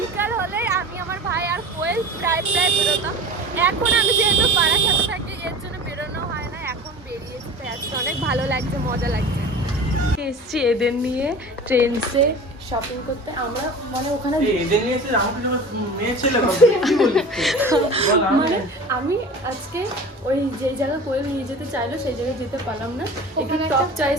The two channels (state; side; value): normal; both; correlation 0.37